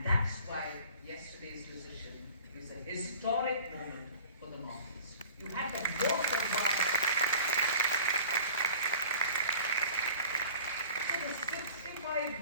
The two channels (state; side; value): inverted; both; correlation -0.45